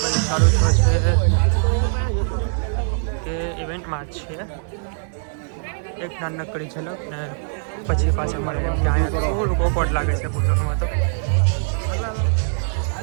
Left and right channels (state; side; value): silent; left; 64 dB below the other